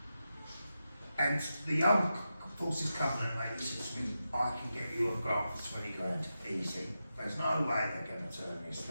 And the Armed Forces Covenant lady says to me, I can get you a grant for 20 grand, easy. There's no way they're going to turn this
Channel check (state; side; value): inverted; both; correlation -0.90